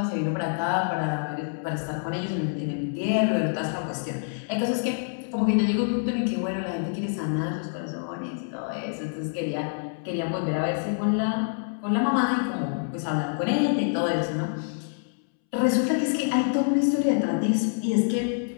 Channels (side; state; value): right; silent; 60 dB below the other